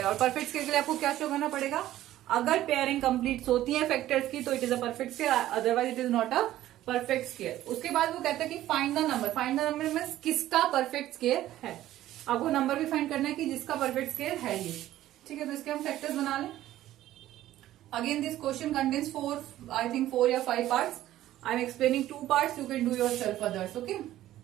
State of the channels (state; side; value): quieter; left; 13.9 dB